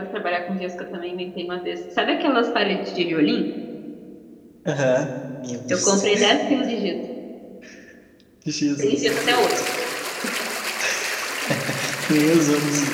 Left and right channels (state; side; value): identical; both; correlation 1.00